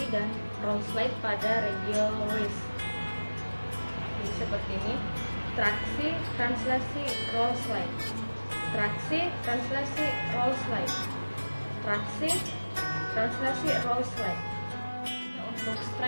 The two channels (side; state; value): both; inverted; correlation -1.00